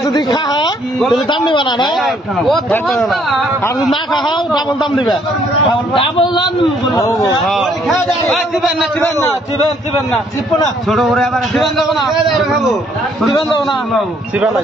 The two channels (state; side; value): normal; both; correlation 0.66